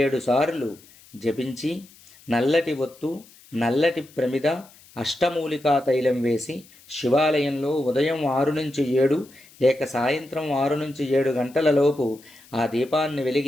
సార్లు జపించి నల్లటి ఒత్తు, నల్లటి ప్రమిద, అష్టమూలికా తైలం వేసి శివాలయంలో ఉదయం 6 నుంచి 7 లేక సాయంత్రం 6 నుంచి 7 గంటల లోపు ఆ దీపాన్ని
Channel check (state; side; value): noise; left; hiss, 25 dB below the sound